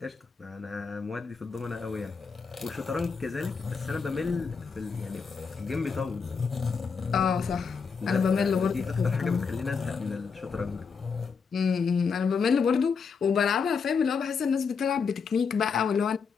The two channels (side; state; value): right; quieter; 5.6 dB